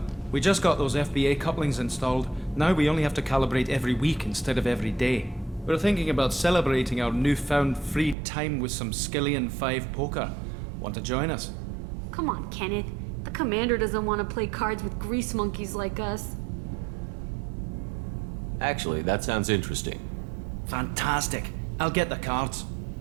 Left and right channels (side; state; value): left; drops out; at 8.2 s